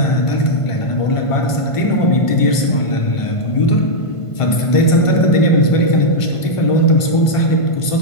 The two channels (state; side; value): late; right; 1.5 ms